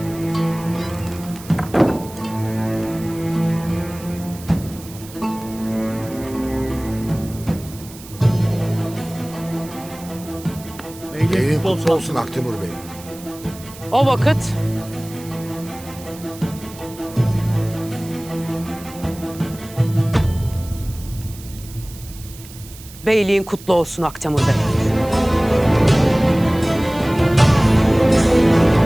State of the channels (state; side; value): noise; right; hiss, 18 dB below the sound